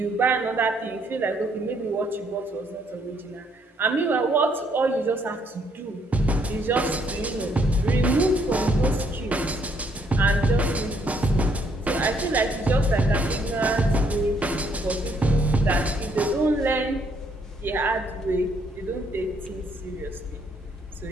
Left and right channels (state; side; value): normal; both; correlation 0.69